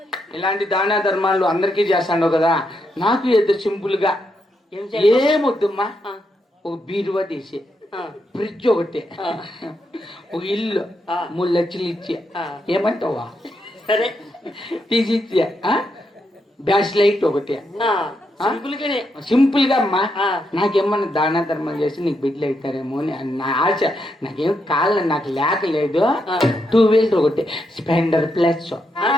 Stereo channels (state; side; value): normal; both; correlation 0.81